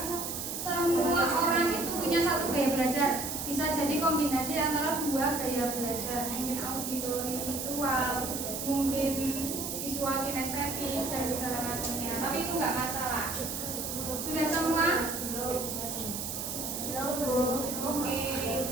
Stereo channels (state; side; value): noise; right; hiss, 4 dB below the sound